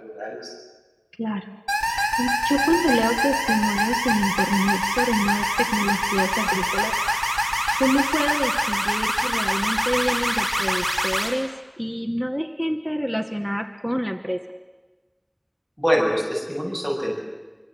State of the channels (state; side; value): identical; both; correlation 1.00